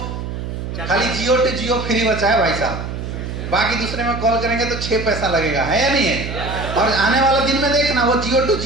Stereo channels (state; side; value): noise; right; hum, 6 dB below the sound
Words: खाली जियो टू जियो फ्री बचा है भाई साहब, बाकी दूसरे में कॉल करेंगे तो 6 पैसा लगेगा, है या नहीं है? और आने वाला दिन में देखना वो जियो टू